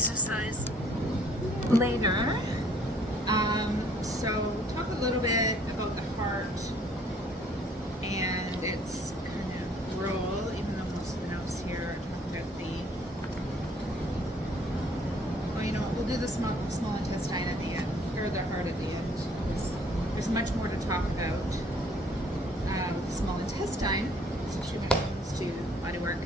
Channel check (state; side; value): normal; both; correlation 0.59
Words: later. So talk a little bit about the heart and its kind of role, even though most of the notes here are talking about we'll do the small intestine at the end, or the heart at the end. There's much more to talk about. The small intestine, especially when it comes to body work.